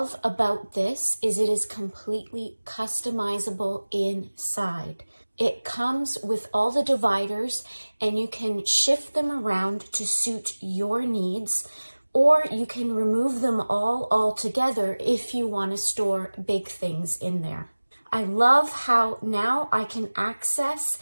about this is it is completely customizable inside. It comes with all the dividers, and you can shift them around to suit your needs, or you can remove them all altogether if you want to store big things in there. I love how now I can access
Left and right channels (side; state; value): both; inverted; correlation -1.00